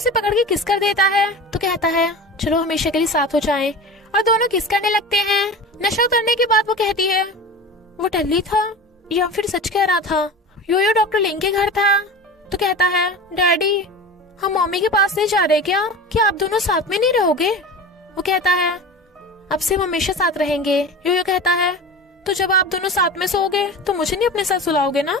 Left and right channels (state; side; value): normal; both; correlation 0.32